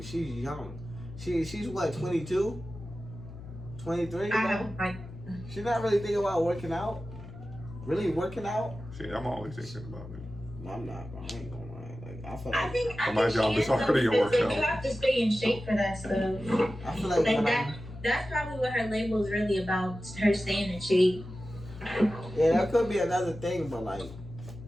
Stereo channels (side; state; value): left; noise; hum, 14 dB below the sound